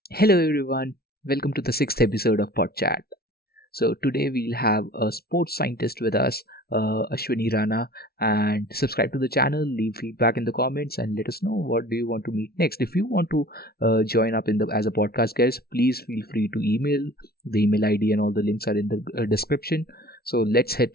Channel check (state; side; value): late; right; 0.45 ms